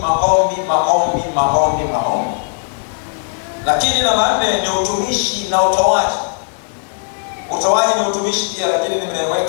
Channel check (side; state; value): right; silent; 67 dB below the other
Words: maombi, maombi, maombi, maombi. Lakini namba 4 ni utumishi na utoaji. Utoaji ni utumishi pia, lakini